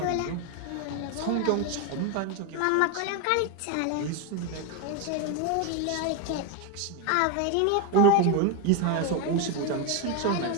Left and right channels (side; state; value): both; different; correlation 0.02